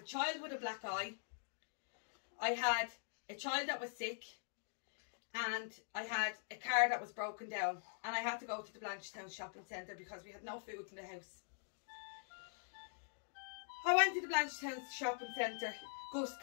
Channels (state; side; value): silent; right; digital silence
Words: child with a black eye, I had a child that was sick, and I had a car that was broken down, and I had to go to the Blanchetown shopping centre because we had no food in the house. I went to the Blanchetown shopping centre. Gus